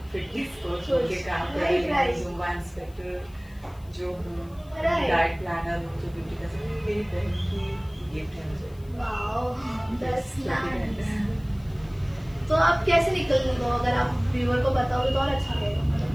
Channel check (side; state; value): left; noise; hiss, 28 dB below the sound